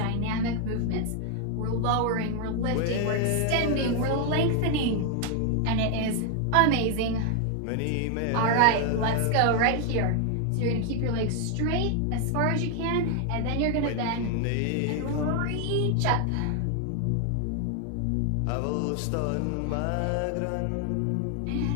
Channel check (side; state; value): both; different; correlation 0.00